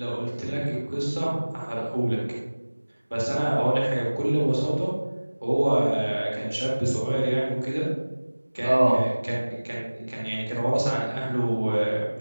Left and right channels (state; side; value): inverted; both; correlation -1.00